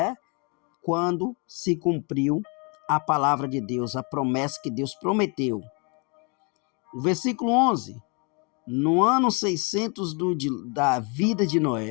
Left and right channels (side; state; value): right; quieter; 33.1 dB